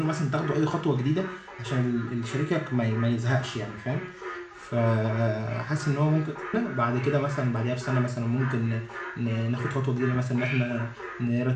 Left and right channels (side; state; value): both; identical; correlation 1.00